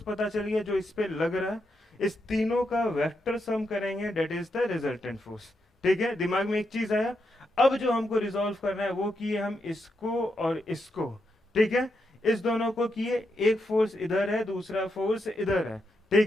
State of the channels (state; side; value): normal; both; correlation 0.83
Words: पता चल गया जो इस पे लग रहा है, इस तीनों का वेक्टर सम करेंगे, that is the resultant force. ठीक है, दिमाग में एक चीज आया। अब जो हमको रिजॉल्व करना है वो किए हम इसको और इसको। ठीक है, इस दोनों को किए, एक फोर्स इधर है, दूसरा फोर्स इधर है।